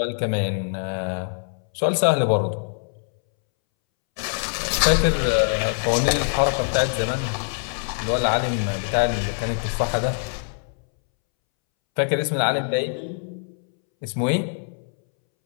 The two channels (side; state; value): right; silent; 63 dB below the other